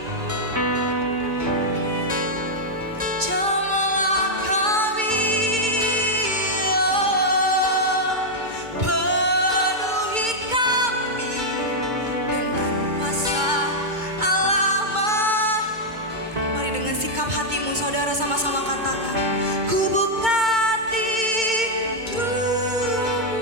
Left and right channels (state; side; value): late; left; 2.2 ms